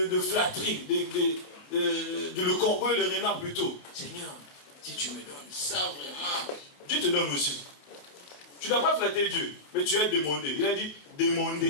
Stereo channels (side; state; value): right; late; 28 ms